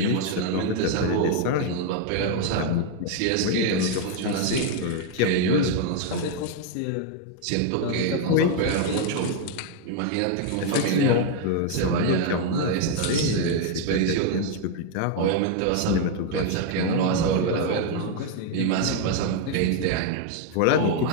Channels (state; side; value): different; both; correlation 0.01